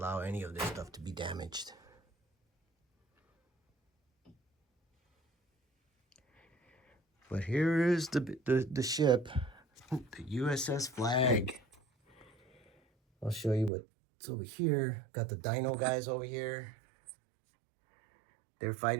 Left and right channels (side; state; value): left; drops out; at 13.7 s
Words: any of this stuff to be damaged. But here is the ship, the USS Flagg. I'll show you what's over here. Got the dino guys over here. They're